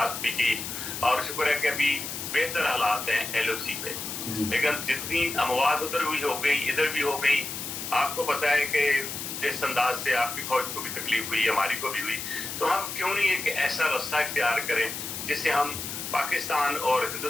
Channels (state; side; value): noise; left; hiss, 6 dB below the sound